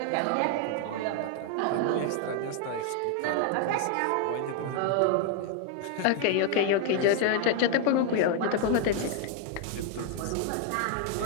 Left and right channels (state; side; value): different; both; correlation 0.00